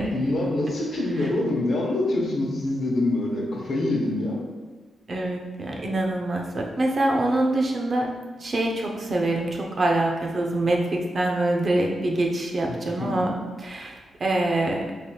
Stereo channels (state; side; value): normal; both; correlation 0.87